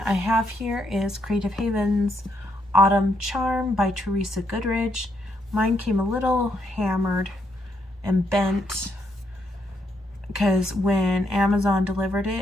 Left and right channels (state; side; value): normal; both; correlation 0.75